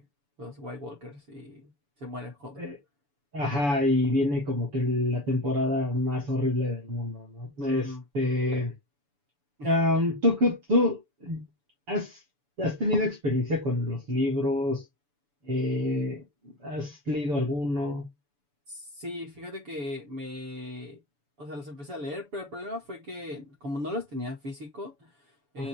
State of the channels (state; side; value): late; left; 7.0 ms